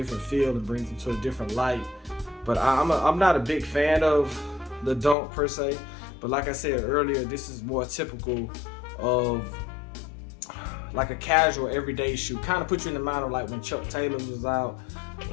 feel and brings them to a different light. But I'm not a big fan of the Dunk per se. But like I said earlier, this is more typical of like a casual everyday shoe. Kind of put you in the mind of like when Chuck Taylors was out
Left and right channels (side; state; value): right; drops out; at 5.2 s